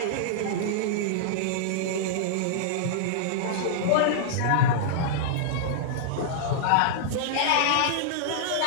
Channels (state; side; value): different; both; correlation -0.02